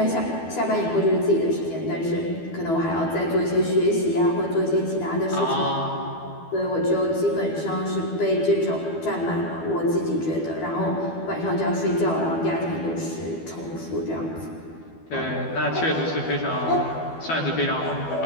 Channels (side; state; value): right; late; 12 ms